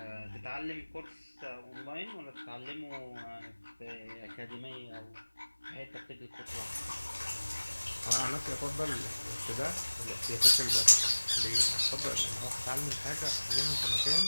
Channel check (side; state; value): both; inverted; correlation -1.00